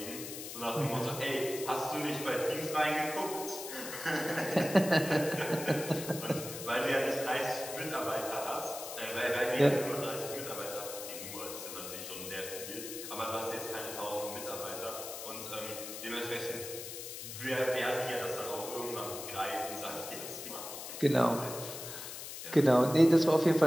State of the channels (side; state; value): left; noise; hiss, 9 dB below the sound